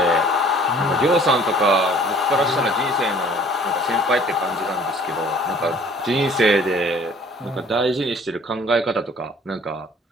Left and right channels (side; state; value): both; normal; correlation 0.53